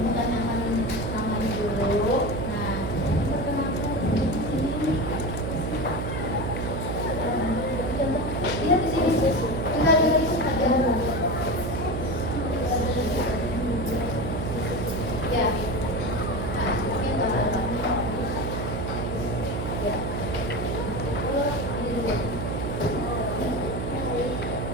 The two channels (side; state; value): right; noise; hum, 3 dB below the sound